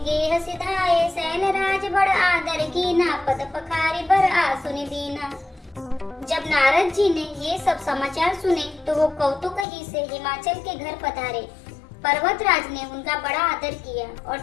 गेह सिधाए सैन राज बड़ आदर कीना पद पखारी बर आसुनि दीना। जब नारद जी ने ये सब समाचार सुने तो वो कौतुक ही से हिमाचल के घर पधारे। पर्वत राज ने उनका बड़ा आदर किया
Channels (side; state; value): right; drops out; at 9.7 s